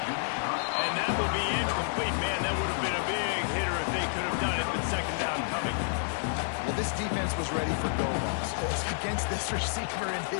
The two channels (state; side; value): silent; right; 55 dB below the other